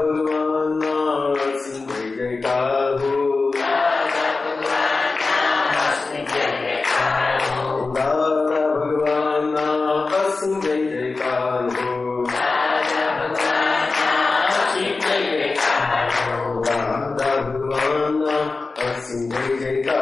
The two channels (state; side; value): quieter; right; 3.9 dB